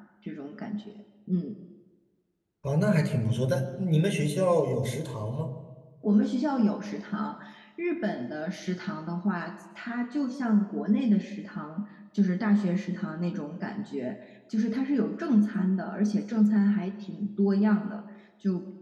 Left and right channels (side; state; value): both; identical; correlation 1.00